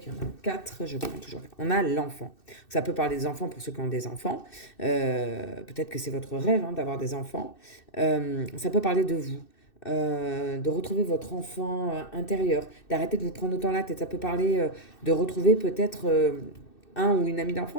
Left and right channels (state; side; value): late; right; 2.6 ms